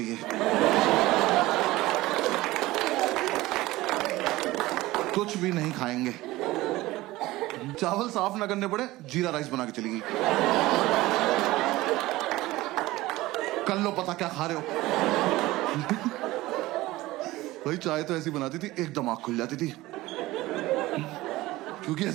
कुछ भी नहीं खाएंगे, चावल साफ ना करने पड़े, जीरा राइस बना के चली गई। कर लो पता क्या खा रहे हो। भाई चाय तो ऐसी बनाती थी एकदम आंख खुल जाती थी, क्योंकि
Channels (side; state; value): left; quieter; 18.3 dB